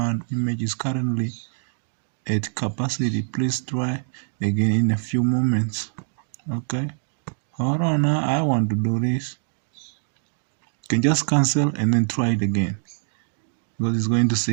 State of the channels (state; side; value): silent; left; digital silence